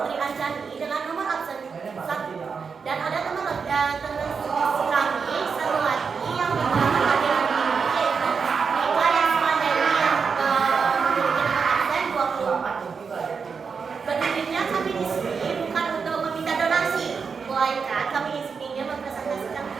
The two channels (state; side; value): quieter; left; 5.6 dB